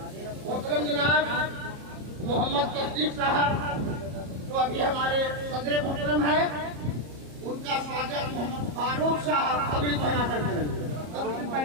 मोहतरम जनाब मोहम्मद तस्दीक साहब जो अभी हमारे सदर मोहतरम है, उनका स्वागत मोहम्मद फारूक साहब पगड़ी पहनाकर करेंगे।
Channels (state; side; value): late; left; 34 ms